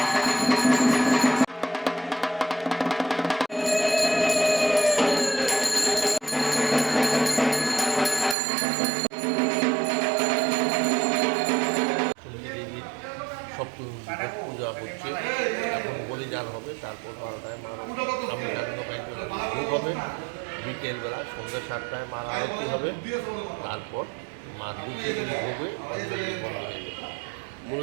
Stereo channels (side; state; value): left; drops out; at 8.3 s